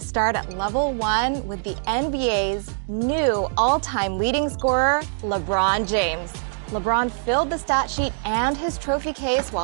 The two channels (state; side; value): silent; left; digital silence